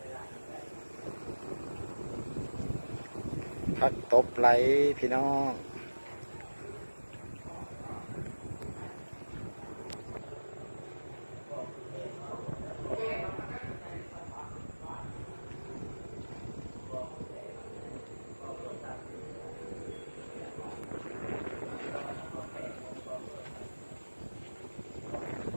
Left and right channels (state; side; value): inverted; both; correlation -1.00